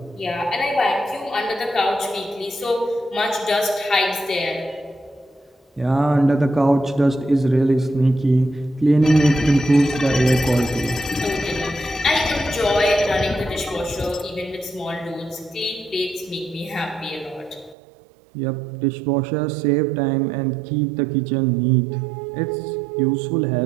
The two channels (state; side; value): drops out; left; at 17.8 s